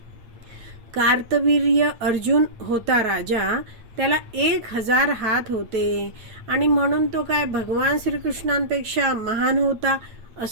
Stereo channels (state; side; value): late; left; 8.6 ms